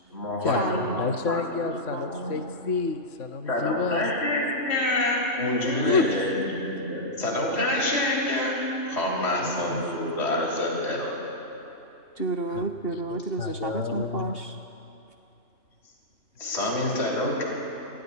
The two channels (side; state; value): right; late; 3.1 ms